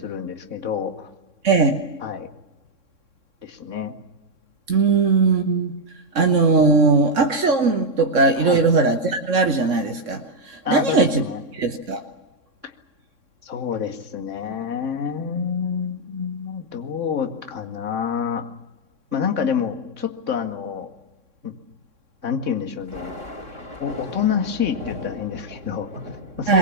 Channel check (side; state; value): left; late; 3.6 ms